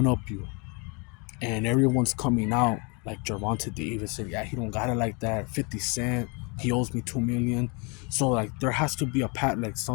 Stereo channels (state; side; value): quieter; right; 31.7 dB